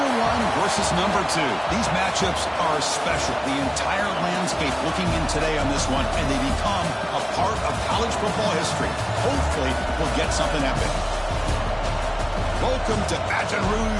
one versus number two. These matchups are special. The entire landscape looking in today on this one, and they become a part of college football history. Hopefully, we'll get something epic. Welcome to Baton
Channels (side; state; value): both; identical; correlation 1.00